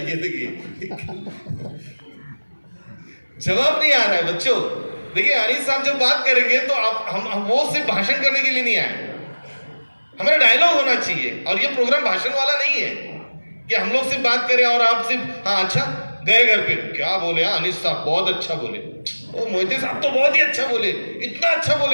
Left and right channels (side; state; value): both; inverted; correlation -1.00